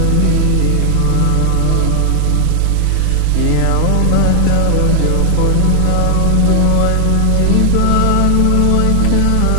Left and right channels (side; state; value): both; different; correlation 0.00